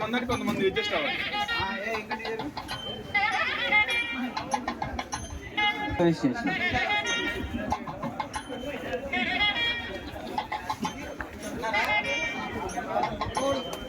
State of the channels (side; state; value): both; identical; correlation 1.00